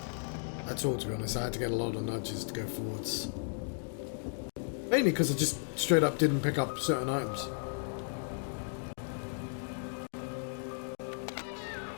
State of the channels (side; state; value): right; silent; digital silence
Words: at all, to be honest. I had to get a lot of nudges to go forwards. Mainly because I just straight up didn't pick up certain items.